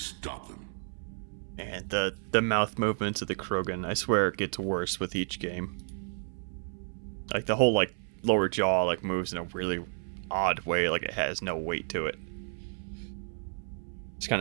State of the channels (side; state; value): left; silent; 57 dB below the other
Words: them. And the mouth movements of the Krogan, I swear it gets worse with each game. Like the whole lower jaw moves in a really odd way, like it has no weight to it. Just kind